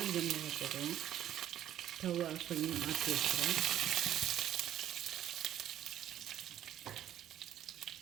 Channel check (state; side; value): quieter; left; 11.5 dB